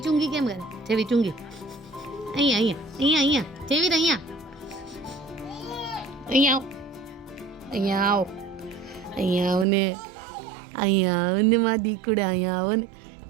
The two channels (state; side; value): drops out; left; at 9.7 s